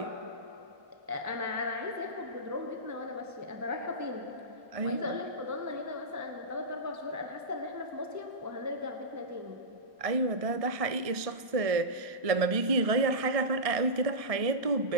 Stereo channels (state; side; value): late; left; 1.6 ms